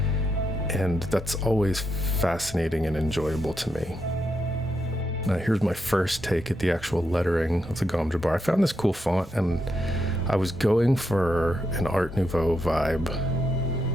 and that's always fascinating and enjoyable to me. Now here's my first take at the actual lettering of the Gom Jabbar. I found this cool font, and I was going for an Art Nouveau vibe,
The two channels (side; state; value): both; normal; correlation 0.82